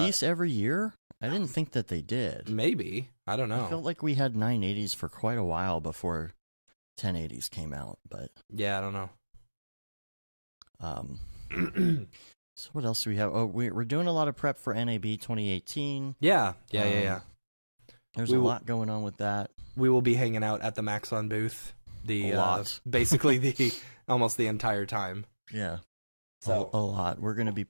every year? I didn't think that they did. Maybe. I don't know. I felt like we had 980s for quite a while before 1080s came out, but... Yeah, I don't know. So what else do we have? Oh, we're doing a lot of prep for NAB 2018. Yeah. There's a lot going on with that. We will be hanging out at the Maxon booth. A lot. Basically almost the entire time. Yeah. So a lot. We're going to be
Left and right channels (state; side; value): inverted; both; correlation -1.00